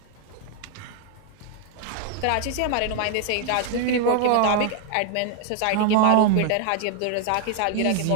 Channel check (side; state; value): both; different; correlation 0.00